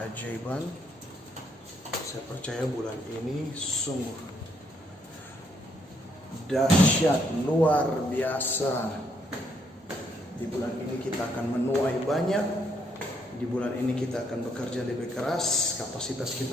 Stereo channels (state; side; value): normal; both; correlation 0.72